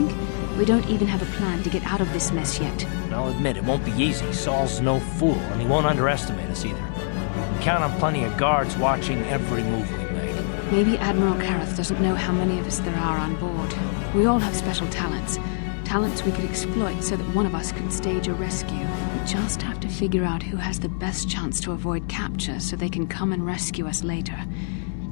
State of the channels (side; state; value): right; silent; digital silence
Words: We don't even have a plan to get out of this mess yet. And I'll admit, it won't be easy. Saul's no fool, and he won't underestimate us either. We count on plenty of guards watching every move we make. Maybe Admiral Karrath doesn't know how many of us there are on board. We all have special talents. Talents we could exploit so that one of us can stage a rescue. We just have to figure out who has the best chance to avoid capture so they can come and rescue us later.